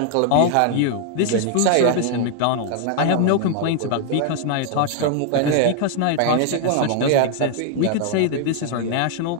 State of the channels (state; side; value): different; both; correlation 0.00